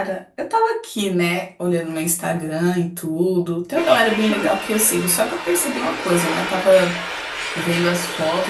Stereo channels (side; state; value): both; identical; correlation 1.00